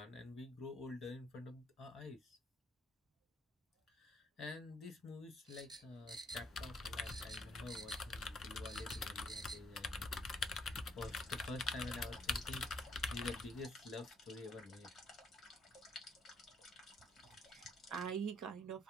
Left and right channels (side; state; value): both; normal; correlation 0.68